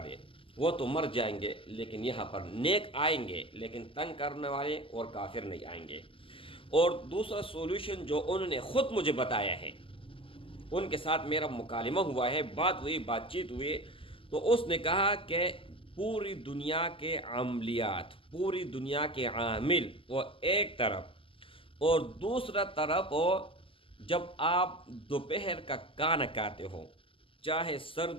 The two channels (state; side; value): late; right; 0.25 ms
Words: دیں، وہ تو مر جائیں گے لیکن یہاں پر نیک آئیں گے، لیکن تنگ کرنے والے اور کافر نہیں آئیں گے۔ اور دوسرا سولوشن جو انہوں نے خود مجھے بتایا ہے، ان کے ساتھ میرا مکالمہ ہوا ہے، بات چیت ہوئی، تو اس نے کہا کہ پوری دنیا کے عملیات، پوری دنیا کے عامل وہ ایک طرف، اور دوسرا طرف وہ جب آپ دوپہر کا کھانا کھاتے ہو، چاہے